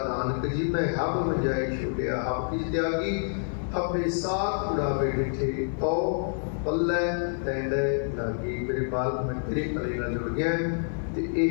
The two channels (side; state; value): right; silent; 60 dB below the other